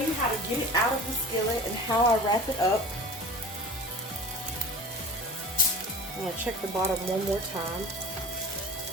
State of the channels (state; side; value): normal; both; correlation 0.38